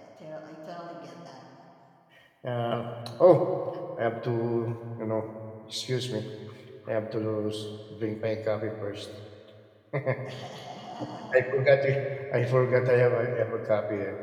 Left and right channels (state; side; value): identical; both; correlation 1.00